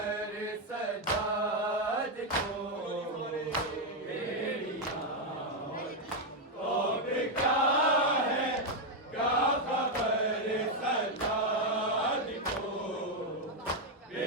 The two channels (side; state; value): both; normal; correlation 0.02